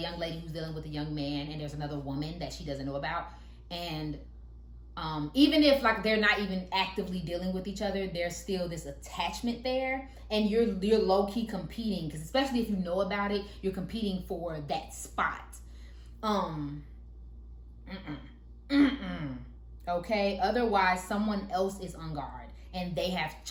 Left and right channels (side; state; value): both; identical; correlation 1.00